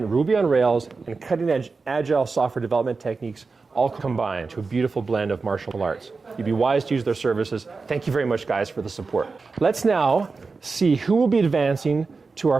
Ruby on Rails, and cutting-edge agile software development techniques all combine to a beautiful blend of martial arts. You'd be wise to use their services. Thank you very much, guys, for the support. Let's now see who will be advancing to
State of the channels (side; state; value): left; quieter; 4.3 dB